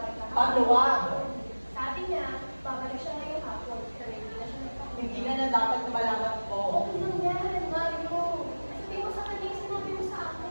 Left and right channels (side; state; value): both; inverted; correlation -1.00